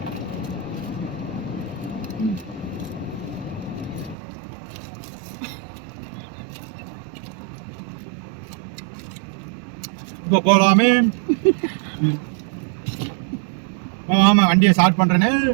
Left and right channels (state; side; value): drops out; left; at 4.2 s